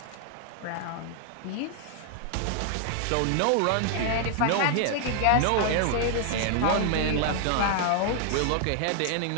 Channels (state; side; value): different; both; correlation 0.00